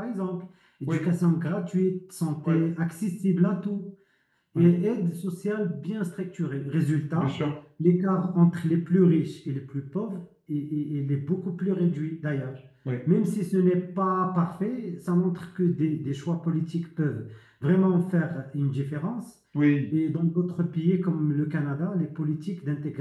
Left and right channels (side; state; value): both; identical; correlation 1.00